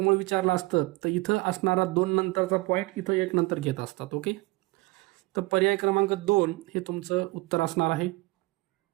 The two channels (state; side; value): quieter; left; 22.9 dB